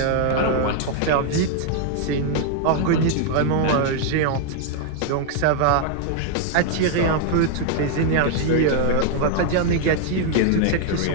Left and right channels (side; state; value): both; different; correlation 0.00